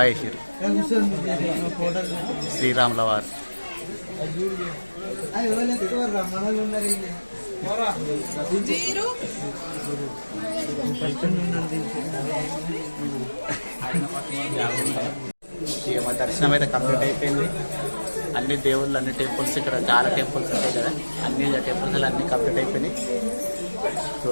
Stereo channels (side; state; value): both; inverted; correlation -1.00